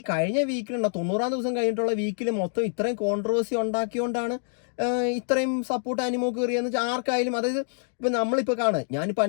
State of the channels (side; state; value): right; silent; digital silence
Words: കഴിഞ്ഞ വീക്കിലുണ്ടോ 90-ാം ദിവസം കഴിഞ്ഞിട്ടുള്ള വീക്കിൽ മൊത്തം ഇത്രയും കോൺട്രവേഴ്സി ഉണ്ടാക്കിയോണ്ടാണ് ഇത്രയും സപ്പോർട്ട് അനുമോക്ക് കയറിയെന്ന് വെച്ചാൽ ആർക്കായാലും. അതായത് ഇപ്പം നമ്മളിപ്പോൾ ഞാനിപ്പോൾ